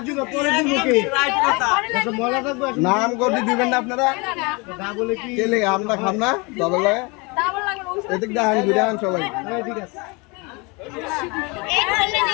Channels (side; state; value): right; quieter; 28.2 dB